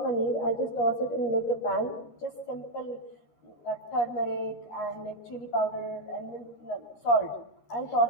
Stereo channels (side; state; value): right; late; 13 ms